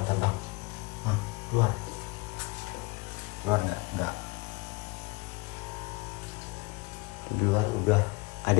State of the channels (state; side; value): quieter; right; 25.7 dB